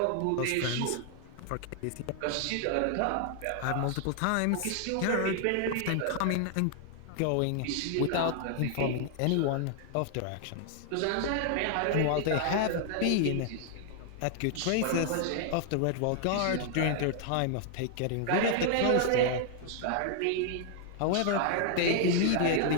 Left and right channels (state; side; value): different; both; correlation 0.00